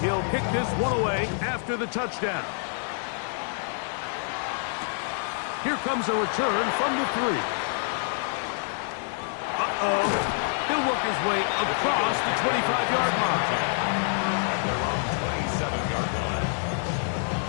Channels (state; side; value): silent; right; 60 dB below the other